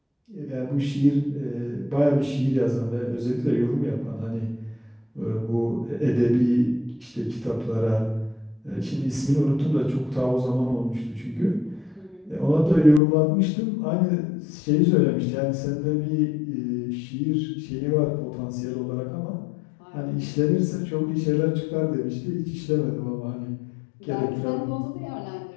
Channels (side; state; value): right; drops out; at 13.0 s